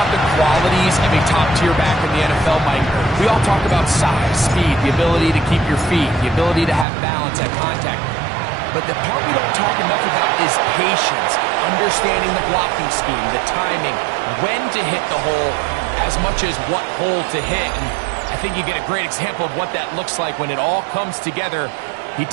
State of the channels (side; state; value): left; drops out; at 6.9 s